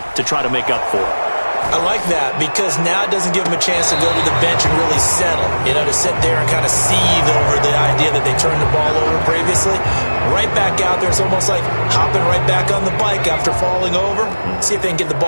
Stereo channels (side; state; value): both; inverted; correlation -1.00